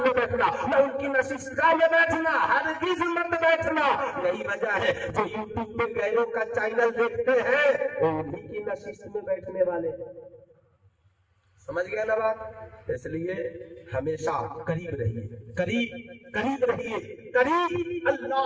بیٹھنا، نہ ان کی نشستگاہ میں بیٹھنا، ہرگز مت بیٹھنا۔ یہی وجہ ہے جو یوٹیوب پہ غیروں کا چینل دیکھتے ہیں وہ انہی کی نشست میں بیٹھنے والے، سمجھ گئے نا بات؟ اس لیے ہمیشہ قریب رہیے، قریب رہیے، قریب۔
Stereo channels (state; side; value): identical; both; correlation 1.00